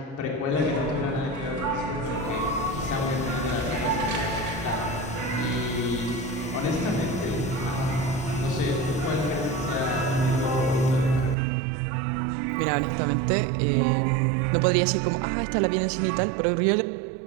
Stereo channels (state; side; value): drops out; left; at 11.4 s